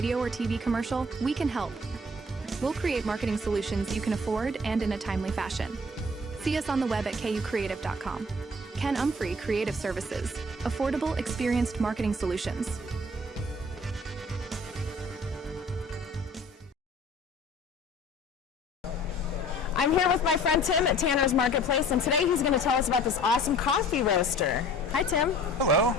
or TV commercial, we can help. We'll create marketing solutions you can afford and in a timely fashion. See us on the web at kucreative.com. Ken Umphrey Creative Services. Affordable, experienced marketing solutions. I'm here with my friend Tim at Tanner's Marketplace, and today he's going to tell us about this awesome coffee roaster. Hi, Tim. Hello.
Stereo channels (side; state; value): both; normal; correlation 0.50